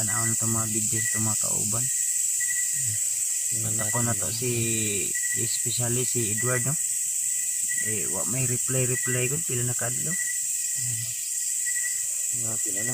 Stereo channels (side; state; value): both; identical; correlation 1.00